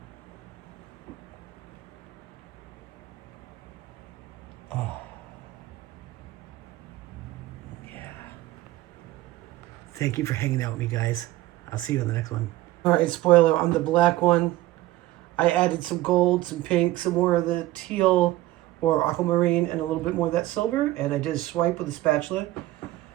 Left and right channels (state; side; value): quieter; left; 16.7 dB